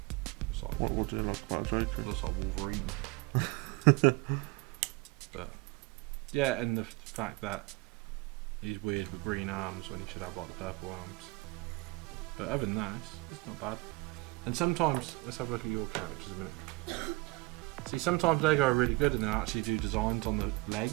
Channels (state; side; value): quieter; left; 23.5 dB